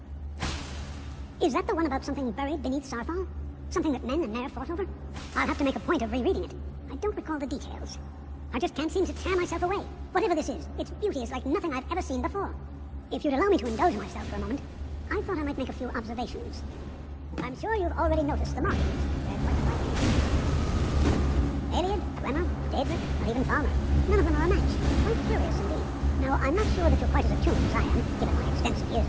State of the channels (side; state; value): both; identical; correlation 1.00